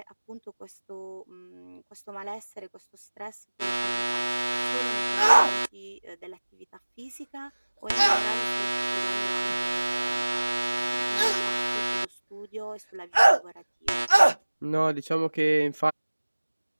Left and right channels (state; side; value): inverted; both; correlation -1.00